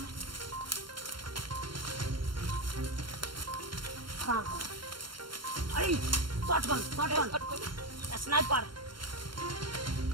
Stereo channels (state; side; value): late; left; 0.73 ms